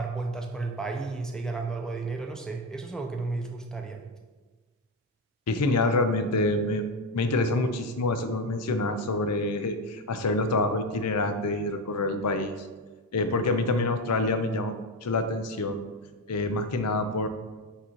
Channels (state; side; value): normal; both; correlation 0.14